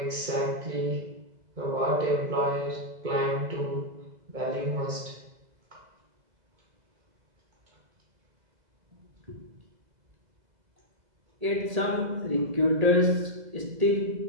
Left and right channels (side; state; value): left; late; 2.0 ms